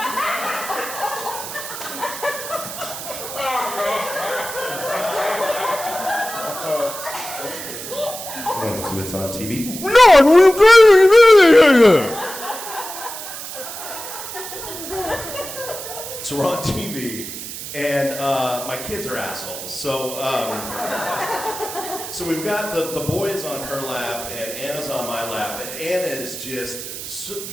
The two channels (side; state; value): right; noise; hiss, 9 dB below the sound